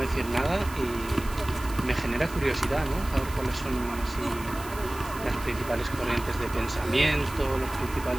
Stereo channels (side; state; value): right; noise; hiss, 16 dB below the sound